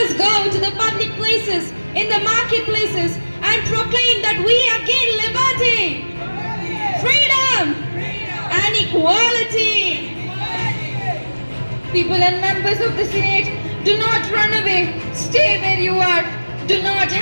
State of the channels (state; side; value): inverted; both; correlation -1.00